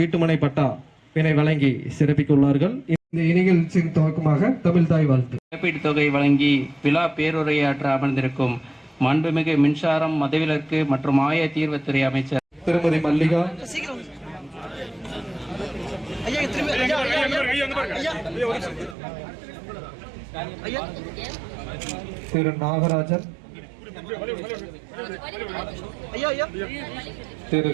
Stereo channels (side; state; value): left; drops out; at 18.9 s